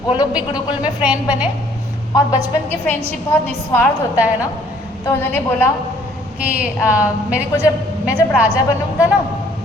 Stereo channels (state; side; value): normal; both; correlation 0.60